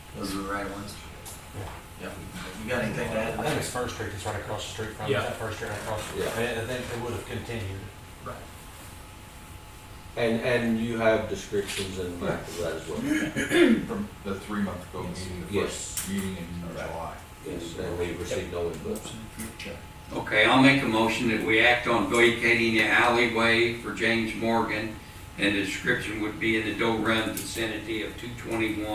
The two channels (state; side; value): identical; both; correlation 1.00